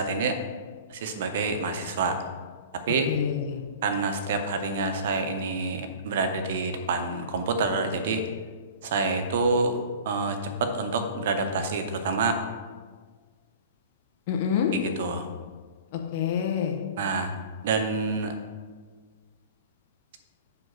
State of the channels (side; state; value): both; inverted; correlation -0.40